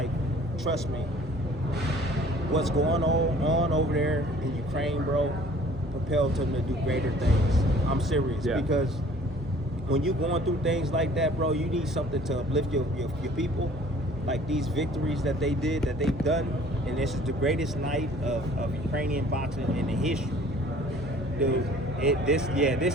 trust me, what's going on over there in Ukraine, bro, propelled him to do greater things. I'm serious, because when you're going through things like that, bro, you need something to uplift your people. Like these victories that they've done, and this is the greatest night of Ukrainian boxing in the history. Dude, this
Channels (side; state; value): both; normal; correlation 0.52